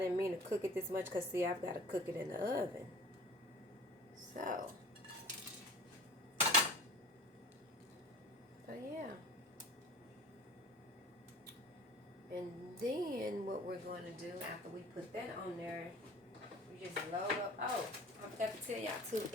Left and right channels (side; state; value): both; normal; correlation 0.42